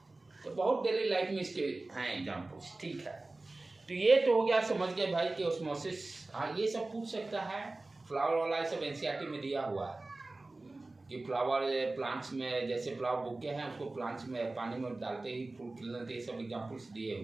तो बहुत डेली लाइफ में इसके हैं एग्जाम्पल्स, ठीक है. तो ये तो हो गया, समझ गए भाई कि ऑस्मोसिस. हाँ, ये सब पूछ सकता है. फ्लावर वाला ये सब एनसीईआरटी में दिया हुआ है कि फ्लावर प्लांट्स में, जैसे फ्लावर बुके हैं उसको प्लांट्स में पानी में डालते ही फूल खिलने, ये सब एग्जाम्पल्स दिए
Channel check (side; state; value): left; quieter; 3.1 dB